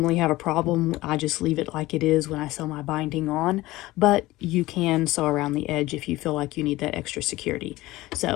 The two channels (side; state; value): right; quieter; 18.4 dB